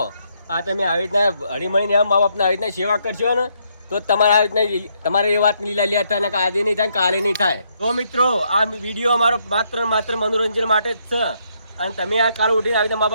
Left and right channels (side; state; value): both; inverted; correlation -0.74